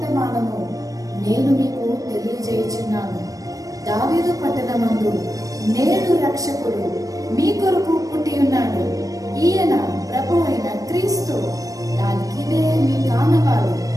నేను మీకు తెలియజేయుచున్నాను. దావీదు పట్టణమందు నేడు రక్షకుడు మీ కొరకు పుట్టి ఉన్నాడు. ఈయన ప్రభు అయిన క్రీస్తు. దానికిదే మీ కానవారు.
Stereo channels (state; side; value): late; left; 0.17 ms